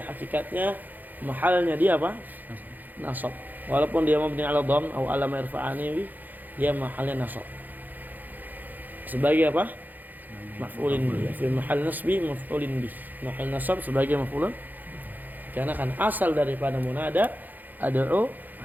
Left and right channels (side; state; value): left; late; 0.085 ms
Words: hakikatnya mahalnya dia apa? Nasab. Walaupun dia mabni ala dom atau ala ma yarfa'ani bih, dia mahalnya nasab sebagai apa? Maf'ulin bih. Fi mahal nasbi maf'ulin bih, mahal nasab sebagai maf'ulun, karena kan asal daripada munada ad'u